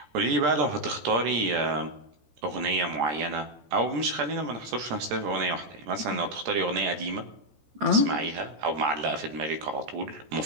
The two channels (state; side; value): late; left; 13 ms